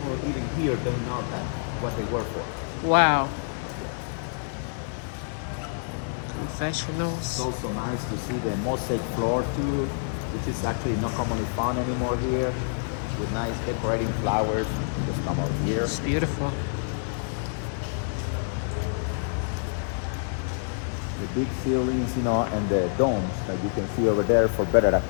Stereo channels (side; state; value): right; silent; 60 dB below the other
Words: even here don't know that what they work for. Wow. Confessionals. It's also nice to see the mosaic floor too, which is actually not commonly found anymore here. With nice decorating flowers. Just come over here. It's beautiful. The big ceilings, you know, and the domes that you can see over there for better